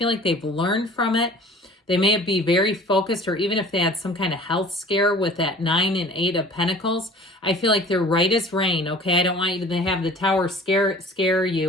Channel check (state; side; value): normal; both; correlation 0.46